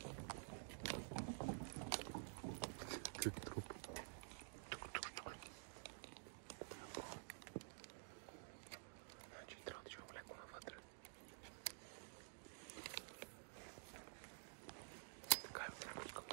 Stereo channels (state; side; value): silent; left; digital silence